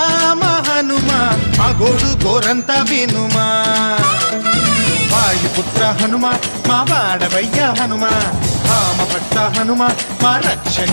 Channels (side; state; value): both; inverted; correlation -1.00